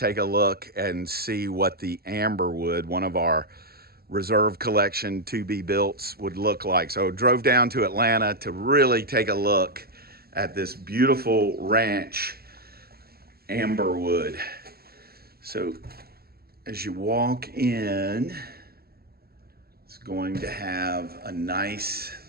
a look and see what the Amberwood, one of our reserve collection to be builts, would look like. So drove down to Atlanta to really take a look at this beautiful ranch, Amberwood. So as you walk in, it's going to have a nice,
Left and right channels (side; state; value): left; late; 0.45 ms